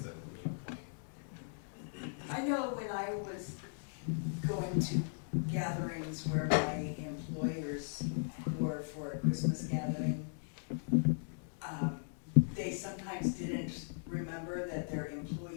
a mute point. I know when I was going to gatherings where my employers were for a Christmas gathering, they sometimes didn't remember that their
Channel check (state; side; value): silent; right; digital silence